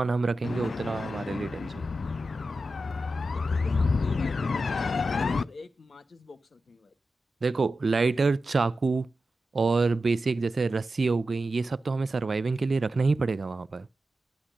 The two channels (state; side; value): normal; both; correlation 0.92